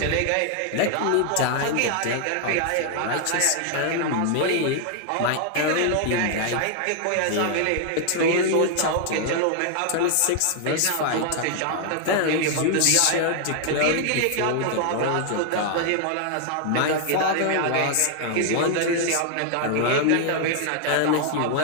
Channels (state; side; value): different; both; correlation 0.00